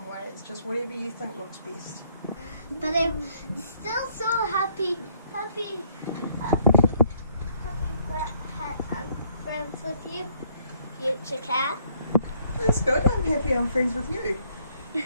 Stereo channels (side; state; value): both; inverted; correlation -0.68